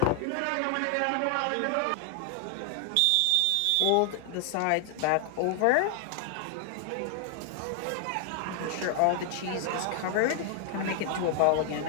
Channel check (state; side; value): different; both; correlation 0.00